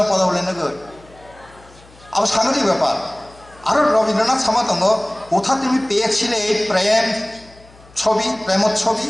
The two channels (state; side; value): noise; left; hum, 25 dB below the sound